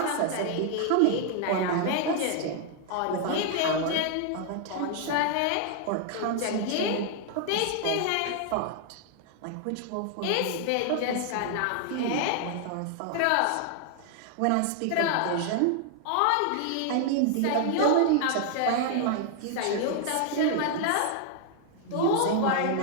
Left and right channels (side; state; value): both; different; correlation 0.00